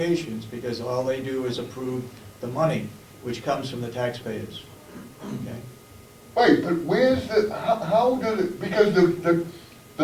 because all they do is approve the money, which comes from the taxpayers. Okay? Right, but where's how does it, because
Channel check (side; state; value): both; identical; correlation 1.00